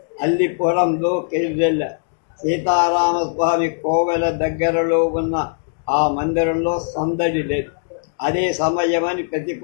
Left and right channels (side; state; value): right; silent; digital silence